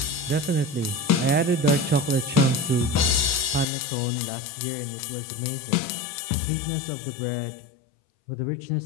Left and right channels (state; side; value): drops out; right; at 3.7 s